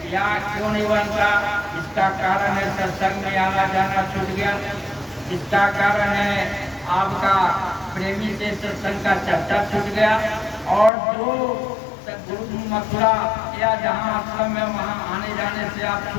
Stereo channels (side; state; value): right; drops out; at 10.9 s